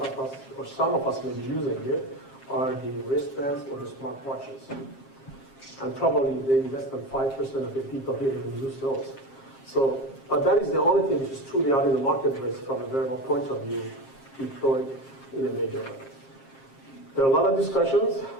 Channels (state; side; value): late; right; 7.5 ms